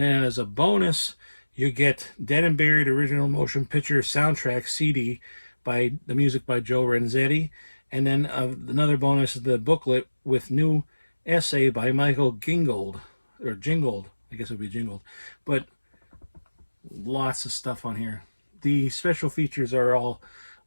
then as a bonus, you get Dead and Buried original motion picture soundtrack CD by the music by Joe Renzetti. And then another bonus is the booklet with new essay by Michael Gingold, or Jingold, I guess it would be Jingold. But lots of stuff on here. The special features are all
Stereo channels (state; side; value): inverted; both; correlation -1.00